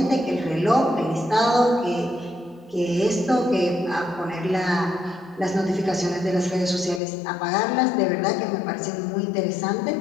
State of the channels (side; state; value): right; drops out; at 7.0 s